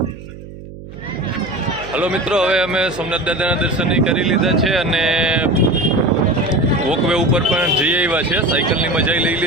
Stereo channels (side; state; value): right; noise; hum, 15 dB below the sound